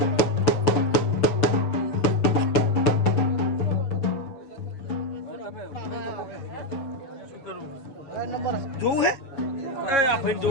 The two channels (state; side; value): late; right; 7.3 ms